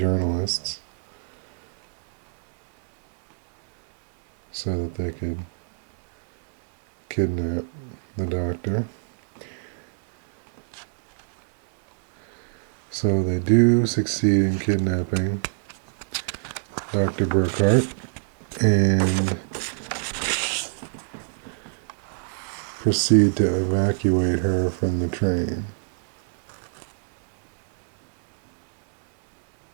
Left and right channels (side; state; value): left; silent; digital silence